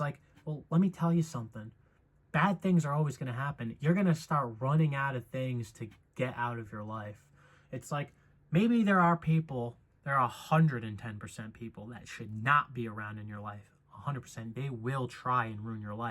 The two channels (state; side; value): identical; both; correlation 1.00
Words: well, let me tell you something. Bad things are always going to happen. You're going to start running out of things to get out of your life. It's like, maybe there are 110% people that should not be around in your life. 100%. They will try and ruin your